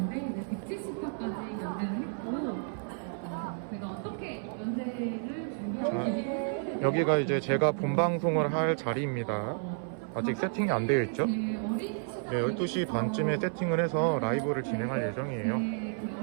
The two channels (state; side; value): silent; left; 57 dB below the other